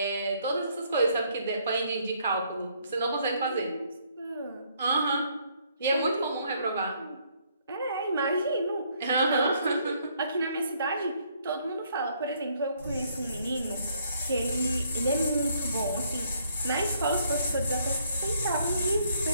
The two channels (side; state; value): both; inverted; correlation -0.68